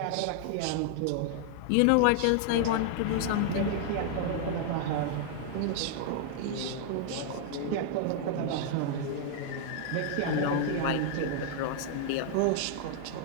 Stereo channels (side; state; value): both; different; correlation -0.01